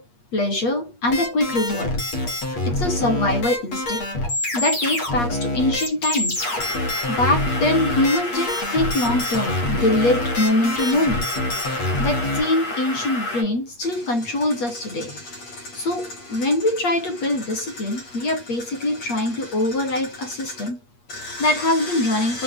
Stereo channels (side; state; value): right; late; 8.4 ms